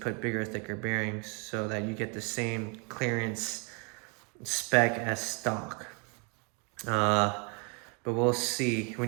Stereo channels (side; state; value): left; quieter; 34.6 dB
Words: bigger, thicker bearings so that you get the same clearance spec as stock. But we'll see.